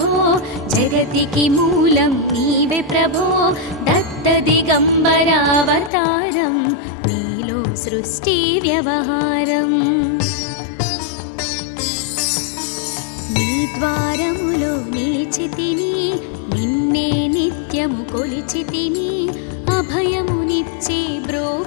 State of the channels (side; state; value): right; drops out; at 5.9 s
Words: జగతికి మూలం నీవే ప్రభో దత్త దిగంబర అవతారం నీలో సృష్టి వ్యవహారం నీ ద్వారములో నిలిచితిని నిన్నే నిత్యము కొలిచితిని అభయమునిచ్చి